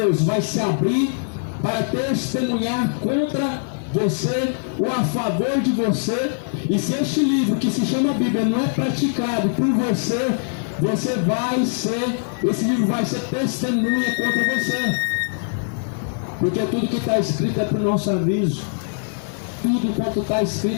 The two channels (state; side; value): silent; right; digital silence